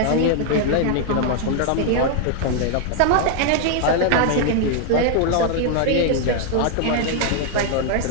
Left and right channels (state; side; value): different; both; correlation 0.00